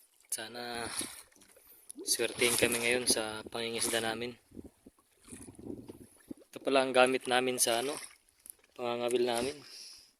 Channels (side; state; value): both; identical; correlation 1.00